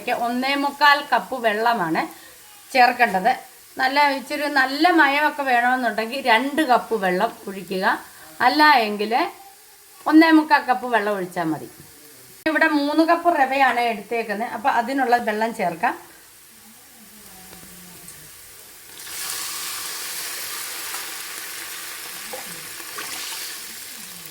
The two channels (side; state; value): both; identical; correlation 1.00